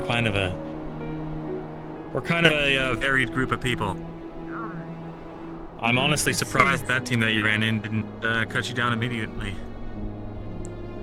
kind of a varied group of people. I'm honestly surprised that team that you ran in didn't cut you down immediately.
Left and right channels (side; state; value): both; identical; correlation 1.00